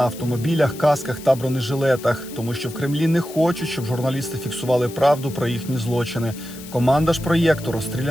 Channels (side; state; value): left; noise; hiss, 16 dB below the sound